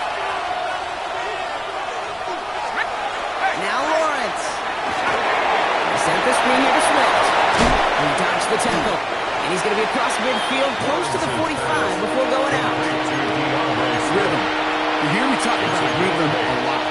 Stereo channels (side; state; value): both; identical; correlation 1.00